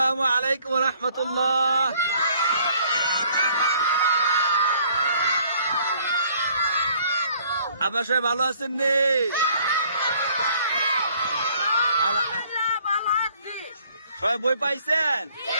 আলাইকুম রহমতুল্লাহ। আপনার সবাই ভালো আছেন নি? সবাই বই পাইছেন?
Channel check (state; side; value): inverted; both; correlation -0.60